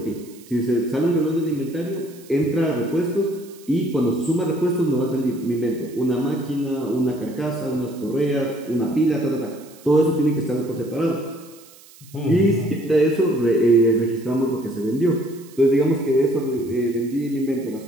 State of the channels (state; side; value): noise; right; hiss, 24 dB below the sound